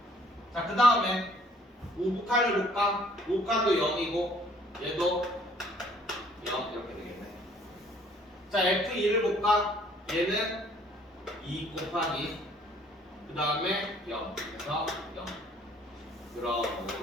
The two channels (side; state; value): both; normal; correlation 0.59